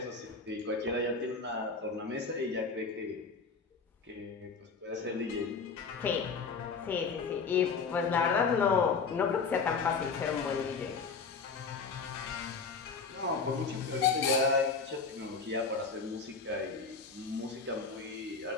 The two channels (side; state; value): right; quieter; 4.9 dB